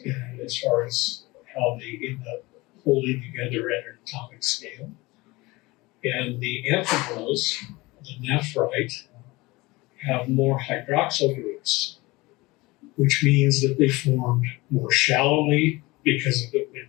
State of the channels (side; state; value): right; quieter; 22.0 dB